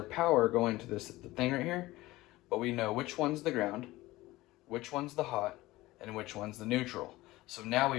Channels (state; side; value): quieter; right; 18.5 dB